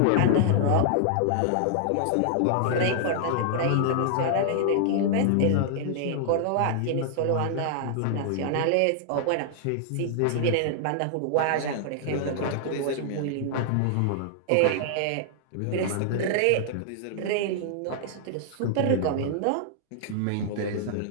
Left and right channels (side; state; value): both; different; correlation -0.01